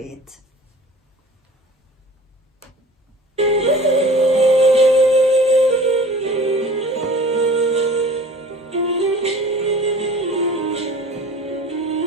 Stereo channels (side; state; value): both; normal; correlation 0.44